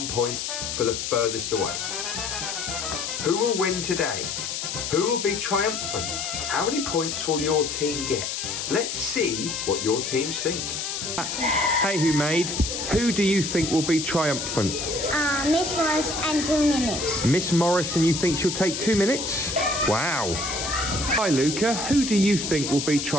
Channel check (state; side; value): noise; left; hiss, 4 dB below the sound